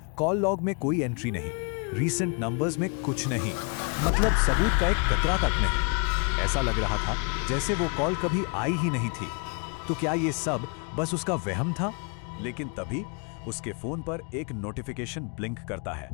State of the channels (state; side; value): quieter; right; 35.7 dB